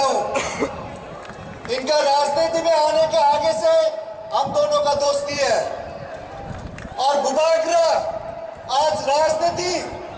हूं। इनका राजनीति में आने के आगे से हम दोनों का दोस्ती है और बुबागरा आज राजनीति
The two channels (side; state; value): both; identical; correlation 1.00